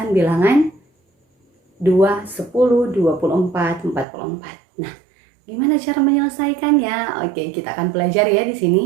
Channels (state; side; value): drops out; left; at 4.0 s